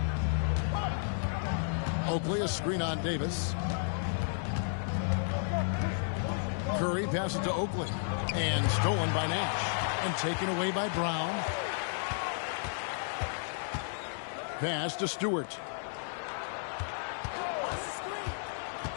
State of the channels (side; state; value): right; silent; digital silence